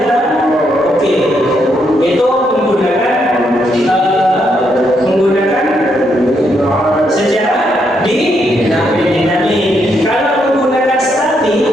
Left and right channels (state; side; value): normal; both; correlation 0.77